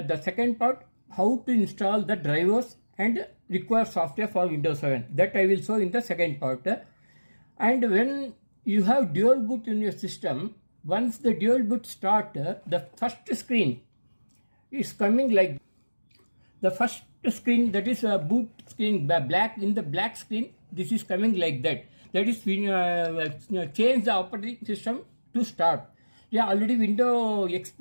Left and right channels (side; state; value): both; inverted; correlation -1.00